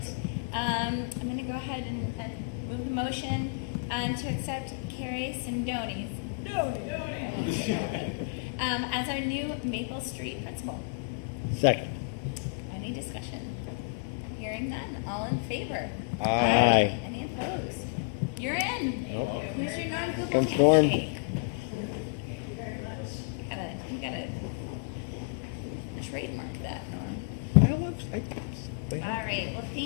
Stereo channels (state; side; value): quieter; right; 31.1 dB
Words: I'm going to go ahead and move the motion to accept Carrie Sindoni's as our new Maple Street principal. Second. Any discussion? Hearing none. All in favor? Aye. Any opposed? You're in. Welcome. Come storm. You gotta trademark that, Norm. All right. Well,